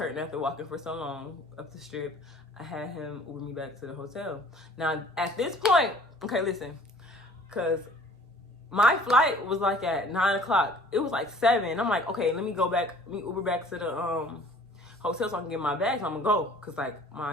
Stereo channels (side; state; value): both; normal; correlation 0.51